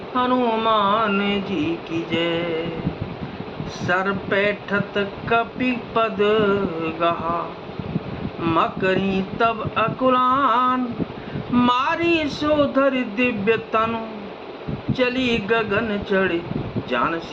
हनुमान जी की जय। सर पैठत कपि पद गहा, मकरी तब अकुलान। मारी सोधर दिव्य तनु, चली गगन चढ़े जान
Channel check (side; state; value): both; identical; correlation 1.00